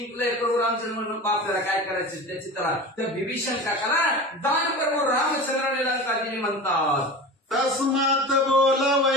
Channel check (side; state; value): both; normal; correlation 0.32